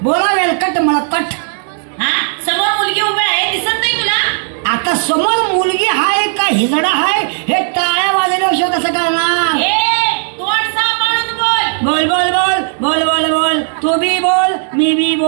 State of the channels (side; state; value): left; silent; digital silence